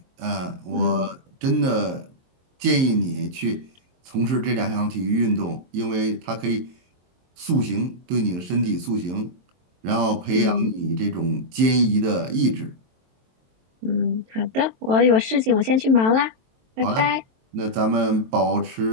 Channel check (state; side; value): late; left; 23 ms